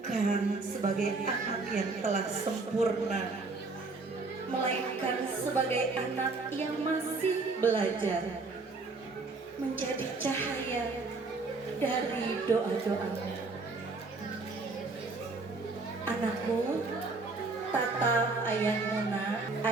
sebagai anak yang telah sempurna, melainkan sebagai anak yang masih belajar, menjadi cahaya dari doa-doamu. Anakku, tatap ayahmu nak.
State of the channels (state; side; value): quieter; left; 3.7 dB